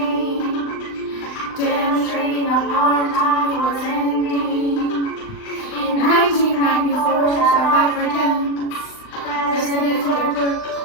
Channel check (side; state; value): right; late; 39 ms